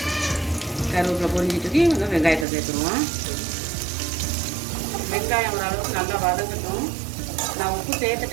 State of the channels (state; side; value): drops out; left; at 2.5 s